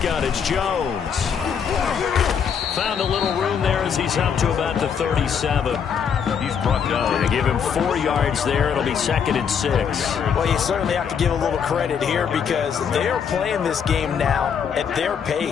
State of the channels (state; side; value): quieter; right; 7.3 dB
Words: it's Jones. Found a little room there as he's up to about the 37. He's brought down. They give him 4 yards there. It'll be 2nd and 6. Well, you certainly have to give a little credit here because they are playing this game now at their